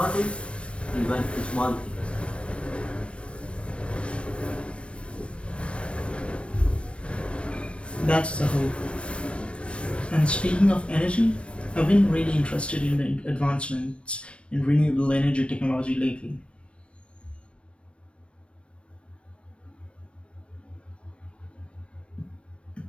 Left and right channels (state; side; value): late; right; 0.060 ms